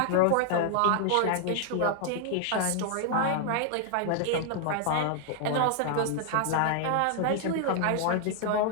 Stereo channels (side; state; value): both; different; correlation 0.00